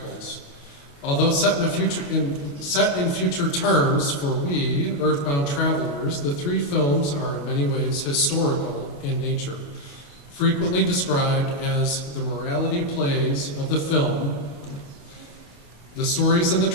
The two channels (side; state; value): right; late; 28 ms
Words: Although set in future terms for we, earthbound travelers, the three films are in many ways historical in nature. Frequently described as the morality plays of the film, the stories in the